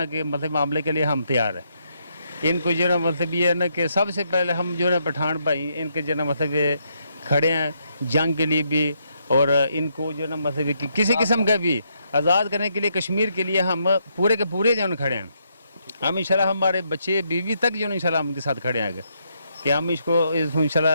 کے مطلب معاملے کے لیے ہم تیار ہیں۔ ان کو جو ہے نا مطلب یہ ہے نا کہ سب سے پہلے ہم جو ہے نا پٹھان بھائی ان کے جو ہے نا مطلب یہ کھڑے ہیں جنگ کے لیے بھی، اور ان کو جو ہے نا مطلب کہ کسی قسم کا بھی آزاد کرنے کے لیے کشمیر کے لیے ہم پورے کے پورے جو ہے نا کھڑے ہیں۔ ہم انشاءاللہ ہمارے بچے بیوی تک جو ہے نا انشاءاللہ ہم کے ساتھ کھڑے ہیں کہ ہم اس کو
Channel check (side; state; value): both; inverted; correlation -0.77